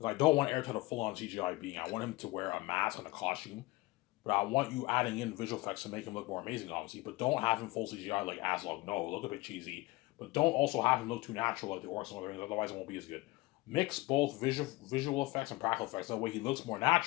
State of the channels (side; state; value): right; quieter; 21.2 dB